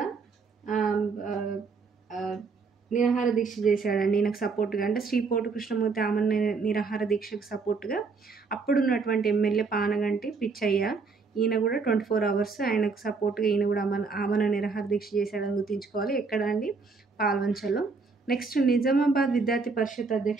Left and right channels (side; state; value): left; quieter; 4.5 dB